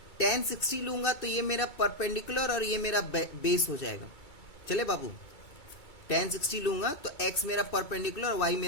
tan 60 लूंगा, तो ये मेरा परपेंडिकुलर और ये मेरा बेस हो जाएगा। चले बाबू, tan 60 लूंगा तो x मेरा परपेंडिकुलर और y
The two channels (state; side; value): late; right; 2.3 ms